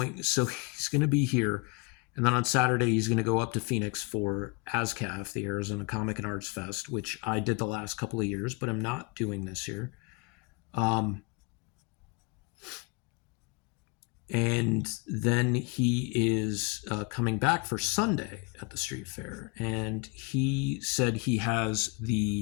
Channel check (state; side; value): quieter; right; 28.9 dB